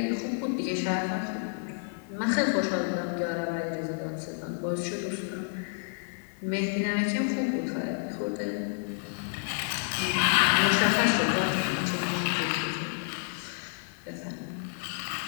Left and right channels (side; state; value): right; silent; 58 dB below the other